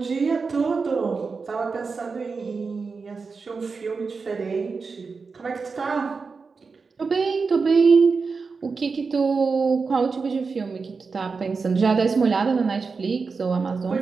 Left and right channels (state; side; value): quieter; left; 4.7 dB